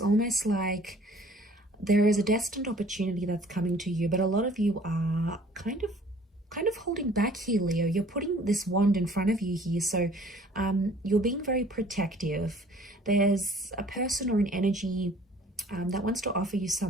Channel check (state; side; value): normal; both; correlation 0.53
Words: like there is a destined opportunity that's coming to you, but a lot of you are kind of holding back here, Leo. You're putting this wand in front of you here, so you're being very protective. There's a person or an energy that wants to offer you